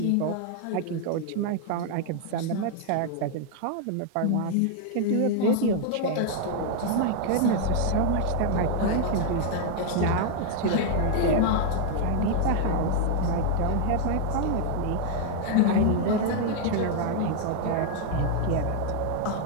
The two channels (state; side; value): different; both; correlation 0.00